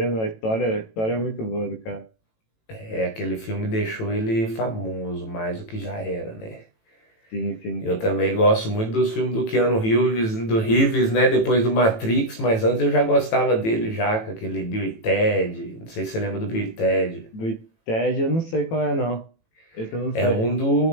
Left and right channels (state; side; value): late; right; 18 ms